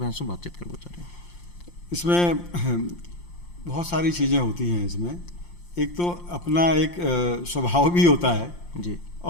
से बातचीत करना चाह रहे हैं। इसमें बहुत सारी चीज़ें होती हैं इसमें। एक तो अपना एक स्वभाव भी होता है जी,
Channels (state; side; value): late; right; 5.7 ms